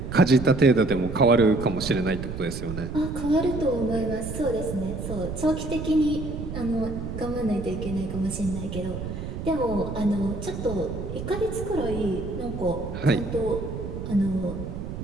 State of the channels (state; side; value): noise; right; rumble, 6 dB below the sound